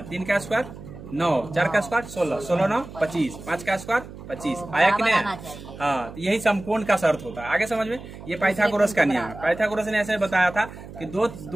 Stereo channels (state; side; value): noise; right; hum, 14 dB below the sound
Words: 3 का स्क्वायर 9, 4 का स्क्वायर 16, 16 9 25, 5 का स्क्वायर 25 आया कि नहीं? हाँ, तो यही समकोण का शर्त होता है। आगे समझ में, ये पाइथागोरस का नियम है। पाइथागोरस ने ऐसे बताया था कि